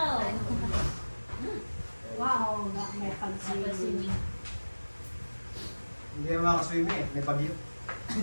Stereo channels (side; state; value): both; inverted; correlation -1.00